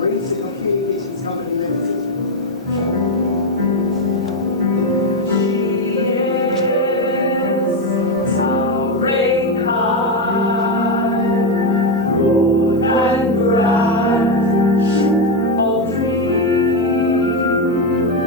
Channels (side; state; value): both; normal; correlation 0.07